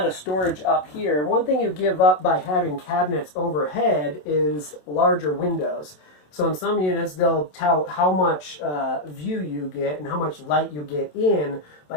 of storage up here. One thing you give up by having cabinets overhead is larger windows. So in some units they'll tout how much view you get and how much light you get in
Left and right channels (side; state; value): right; late; 27 ms